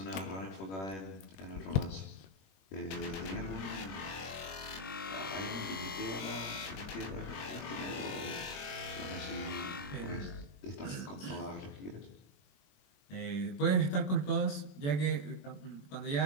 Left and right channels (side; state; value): right; late; 21 ms